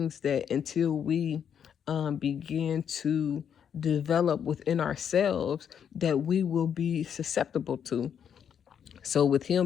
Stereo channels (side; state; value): right; quieter; 8.2 dB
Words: that until we begin to develop within ourselves, that we will be susceptible to. So with